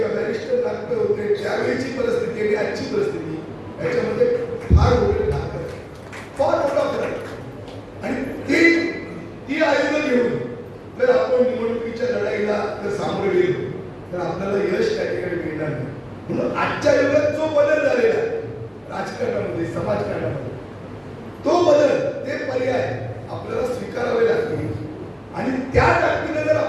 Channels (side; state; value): both; identical; correlation 1.00